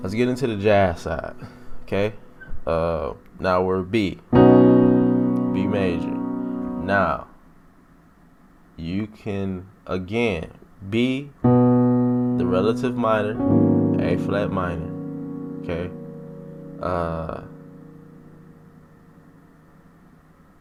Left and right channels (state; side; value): identical; both; correlation 1.00